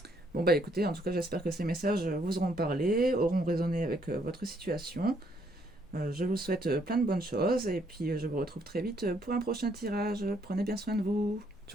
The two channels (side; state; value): both; normal; correlation 0.69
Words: Bon bah écoutez, en tout cas j'espère que ces messages vous auront parlé, auront résonné avec votre situation. Je vous souhaite plein de bonnes choses et puis je vous retrouve très vite pour un prochain tirage. Prenez bien soin de vous.